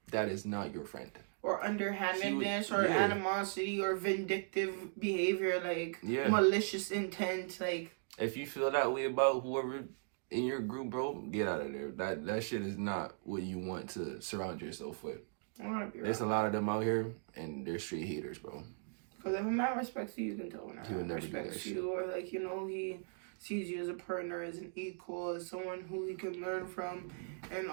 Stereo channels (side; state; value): left; silent; digital silence